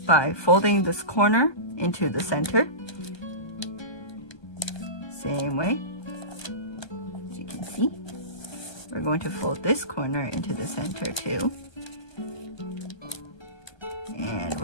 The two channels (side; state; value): right; late; 1.3 ms